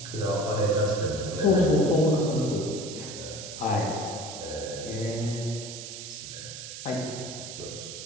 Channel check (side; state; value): right; noise; hiss, 10 dB below the sound